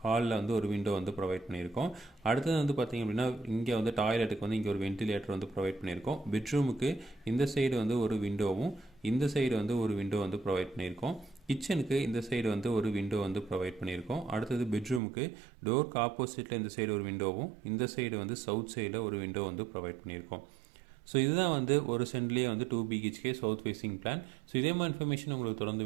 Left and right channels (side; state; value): left; drops out; at 15.0 s